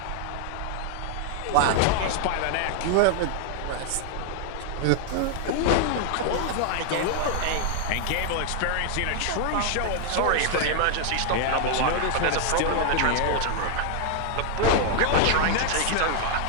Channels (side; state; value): both; different; correlation 0.00